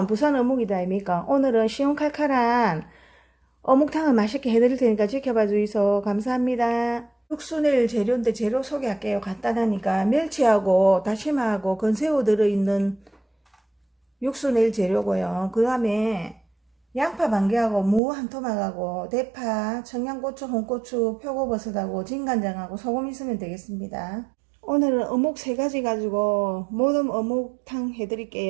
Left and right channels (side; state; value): left; drops out; at 18.0 s